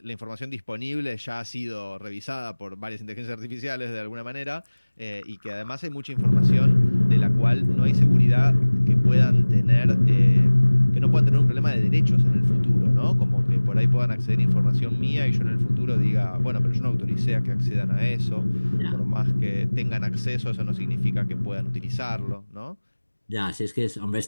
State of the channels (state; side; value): inverted; both; correlation -1.00